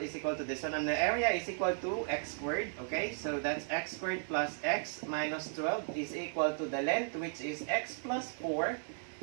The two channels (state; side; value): silent; left; digital silence